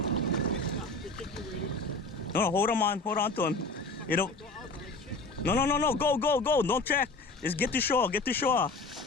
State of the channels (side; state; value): right; quieter; 3.3 dB